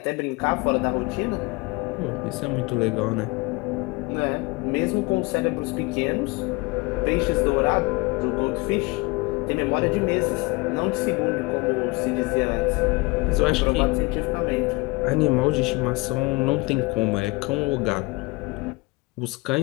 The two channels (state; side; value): quieter; right; 25.6 dB